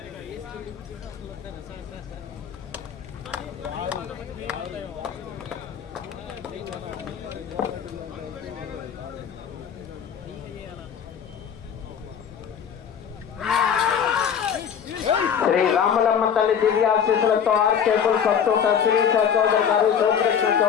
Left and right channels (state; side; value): quieter; right; 7.9 dB